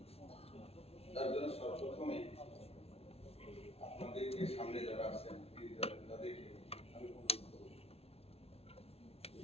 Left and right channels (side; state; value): right; late; 0.29 ms